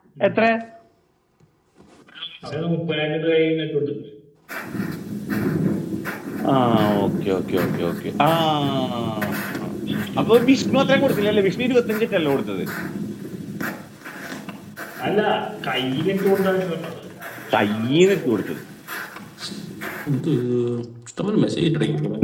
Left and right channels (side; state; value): both; identical; correlation 1.00